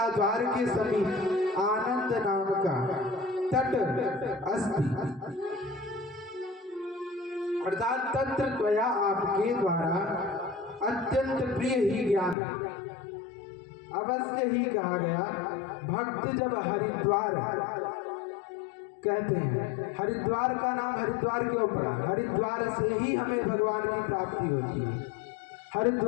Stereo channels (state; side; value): drops out; right; at 12.4 s